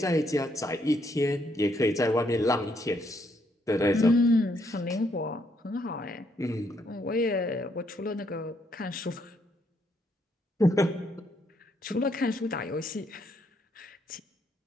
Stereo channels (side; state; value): both; normal; correlation 0.73